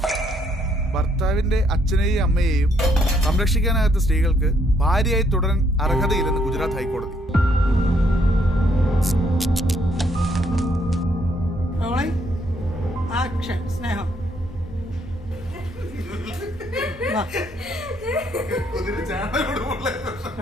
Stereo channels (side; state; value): both; normal; correlation 0.70